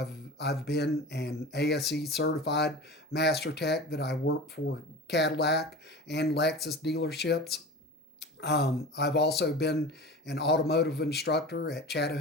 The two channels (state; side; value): normal; both; correlation 0.33